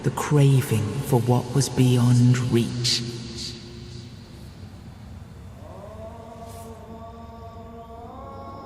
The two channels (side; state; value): both; identical; correlation 1.00